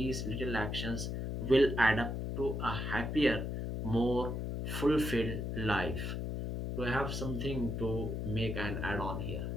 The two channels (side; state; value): left; noise; hum, 3 dB below the sound